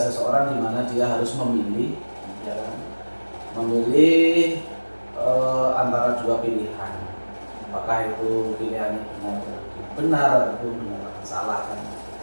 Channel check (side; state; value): both; inverted; correlation -1.00